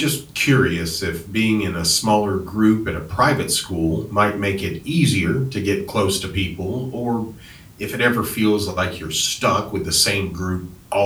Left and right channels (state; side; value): identical; both; correlation 1.00